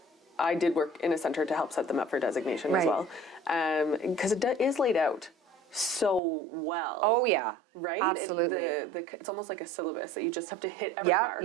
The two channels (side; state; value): left; drops out; at 6.2 s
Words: I did work in a center to help set them up for designation as well. Because it is laid out so well. Oh yeah, right. Absolutely. It's almost like a syllabus that you just have to hit every mark.